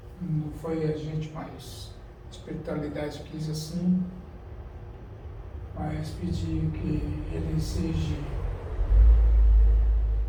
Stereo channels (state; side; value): identical; both; correlation 1.00